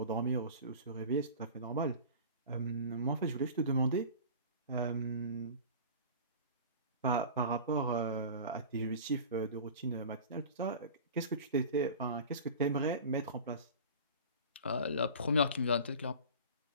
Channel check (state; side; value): inverted; both; correlation -0.38